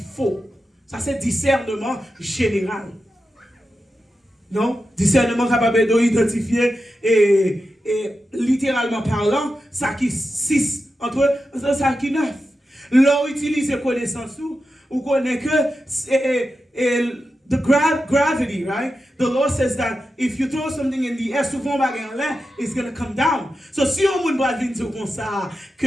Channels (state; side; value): normal; both; correlation 0.90